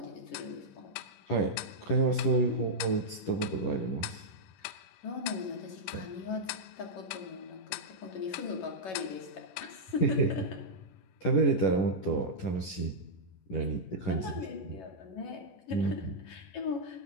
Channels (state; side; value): late; right; 11 ms